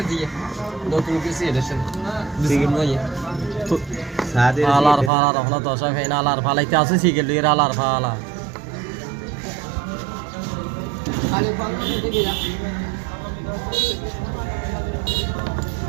দিয়ে নতুন লোকে সিএডের সাথে বিস্কিট নয় সাদে আলার ফালা রহলা দশা ফেন আলার ফালাইতে আছে সিগেল এর আলার ফালা আরে বাংলা দেখে যা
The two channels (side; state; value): left; drops out; at 5.1 s